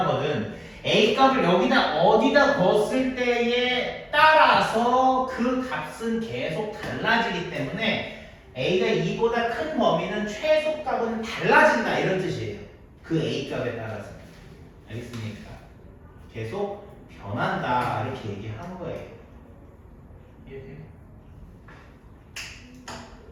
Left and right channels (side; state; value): both; identical; correlation 1.00